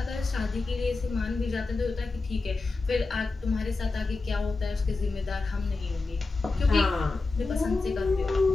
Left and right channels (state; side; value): quieter; right; 3.7 dB